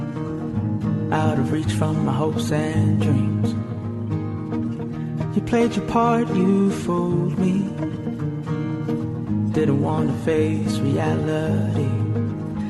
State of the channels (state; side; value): identical; both; correlation 1.00